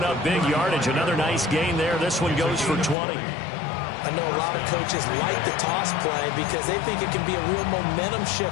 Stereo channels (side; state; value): right; drops out; at 3.0 s